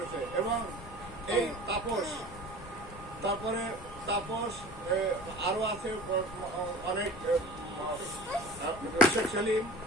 এবং এই তারপরে তাপস আরও আছে অনেক শেখ সেলিম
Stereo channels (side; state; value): left; noise; rumble, 16 dB below the sound